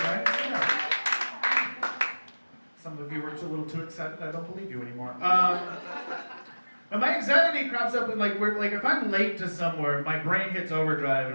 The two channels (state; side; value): inverted; both; correlation -1.00